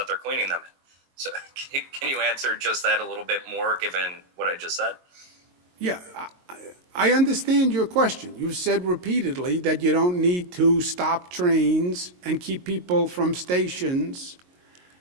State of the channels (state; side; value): late; left; 22 ms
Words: they're cleaning them in. So can you answer just that a little bit more, given what I just said? Yeah, I understand your question. You've said repeatedly that you don't need to stop trains and keep people from stations